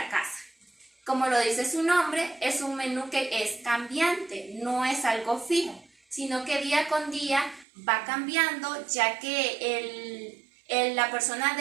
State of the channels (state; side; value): drops out; left; at 7.7 s